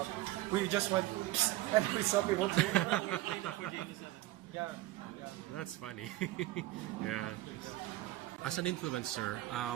We just went and we saw people. Yeah. That's funny. Yeah. As an influencer,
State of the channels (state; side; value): quieter; left; 16.8 dB